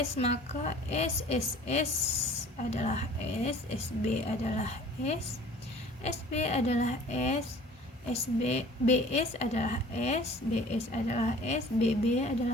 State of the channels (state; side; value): normal; both; correlation 0.48